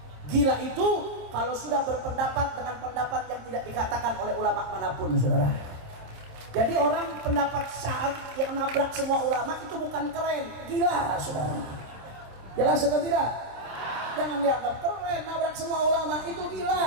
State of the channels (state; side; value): late; left; 26 ms